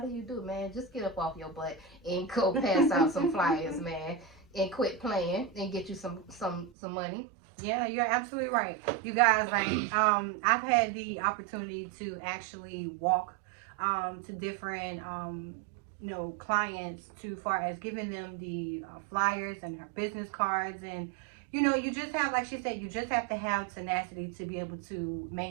you do it, man? Just get up off your butt and go pass out some flyers, man, and quit playing and get you some money. Yeah, you're absolutely right. You guys, like, I've had the opportunity to actually walk to different clients to far as giving them the flyers and her business cards, and you just have, like she said, you just have to have tenacity to be able to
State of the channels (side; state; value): left; drops out; at 6.7 s